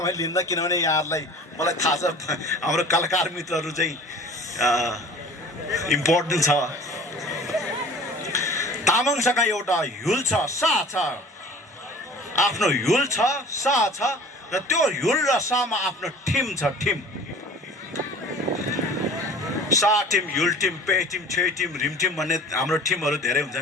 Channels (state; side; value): normal; both; correlation 0.44